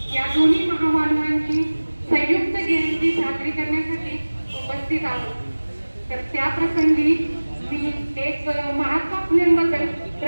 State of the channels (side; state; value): both; inverted; correlation -1.00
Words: या दोन्ही महामानवांची संयुक्त जयंती साजरी करण्यासाठी उपस्थित आहोत. तर त्या प्रसंगी मी एक महात्मा फुलेंबद्दल